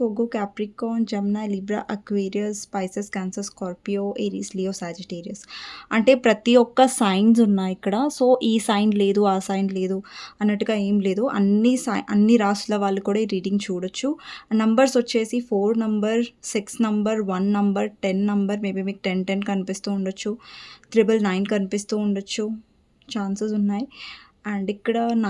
ఒగ్గు, Capricorn, Gemini, Libra, Aquarius, Pisces, Cancer, Scorpio, Aries, Leo, Sagittarius. అంటే ప్రతి ఒక్క science ఉన్నాయి ఇక్కడ. సో, ఈ సైన్ లేదు, ఆ సైన్ లేదు అన్నట్టుగా ఏం లేదు. అన్ని రాసుల వాళ్ళు కూడా ఈ రీడింగ్ చూడొచ్చు. నంబర్స్ వచ్చేసి 4 number, 6 number, 1 number, 10 number, maybe మీకు 10, 10 కనిపిస్తూ ఉండొచ్చు. 999 కనిపిస్తూ ఉండొచ్చు. ఛాన్సెస్ ఉన్నాయి. అండ్ ఇక్కడ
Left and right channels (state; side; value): identical; both; correlation 1.00